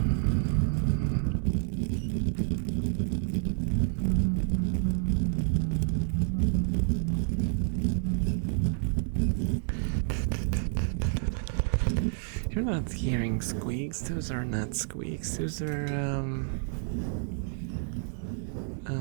You're not hearing squeaks. Those are not squeaks. Those are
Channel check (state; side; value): silent; left; 58 dB below the other